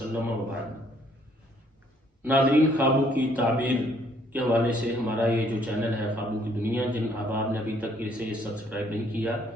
وبعد۔ ناظرین، خوابوں کی تعبیر کے حوالے سے ہمارا یہ جو چینل ہے خوابوں کی دنیا، جن احباب نے ابھی تک اسے سبسکرائب نہیں کیا،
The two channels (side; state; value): both; normal; correlation 0.65